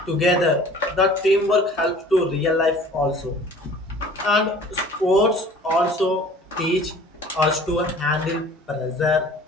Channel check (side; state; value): both; normal; correlation 0.47